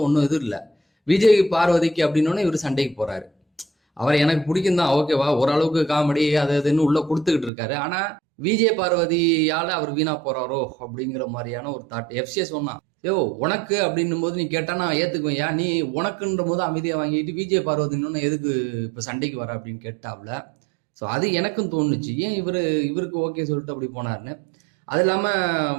ஒன்றும் இது இல்லை. விஜய் பார்வதிக்கு அப்படின்னோடனே இவர் சண்டைக்கு போறாரு. அவர் எனக்கு பிடிக்கும் தான், ஓகேவா, ஓரளவுக்கு காமெடி அது இதுன்னு உள்ள கொடுத்துக்கிட்டு இருக்காரு. ஆனா விஜய் பார்வதியால அவர் வீணா போறாரோ அப்படிங்கிற மாதிரியான ஒரு தாட். எஃப்சிஎஸ் சொன்னா, உனக்கு அப்படின்னும் போது நீ கேட்டா நான் ஏத்துக்குவேன், ஏன் நீ உனக்குன்ற போது அமைதியா வாங்கிட்டு விஜய் பார்வதின்னு எதுக்கு இப்ப சண்டைக்கு வர அப்படின்னு கேட்டாப்ல. ஸோ அது எனக்கும் தோணுச்சு, ஏன் இவருக்கு ஓகே சொல்லிட்டு அப்படி போனாருன்னு. அது இல்லாம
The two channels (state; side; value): drops out; left; at 7.5 s